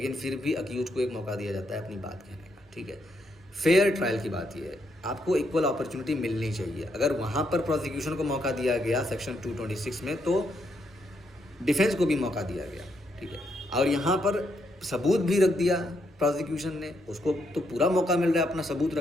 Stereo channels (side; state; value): both; normal; correlation 0.77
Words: फिर भी अक्यूज को एक मौका दिया जाता है अपनी बात कहने का, ठीक है। फेयर ट्रायल की बात यह है, आपको इक्वल अपॉर्चुनिटी मिलनी चाहिए। अगर वहाँ पर प्रोसिक्यूशन को मौका दिया गया सेक्शन 226 में, तो डिफेंस को भी मौका दिया गया, ठीक है। और यहाँ पर सबूत भी रख दिया प्रोसिक्यूशन ने, उसको तो पूरा मौका मिल रहा है अपना सबूत